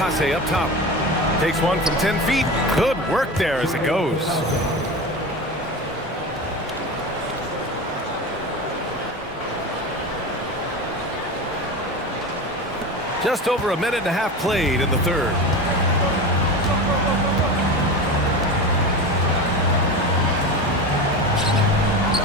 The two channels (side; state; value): both; normal; correlation 0.27